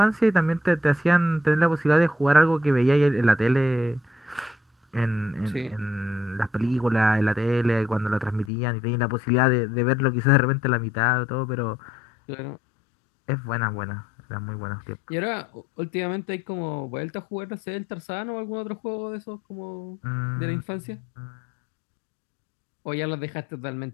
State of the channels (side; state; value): right; drops out; at 8.5 s